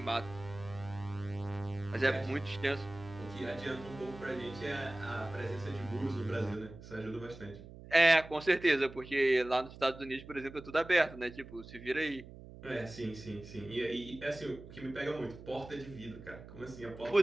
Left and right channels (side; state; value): right; noise; hum, 16 dB below the sound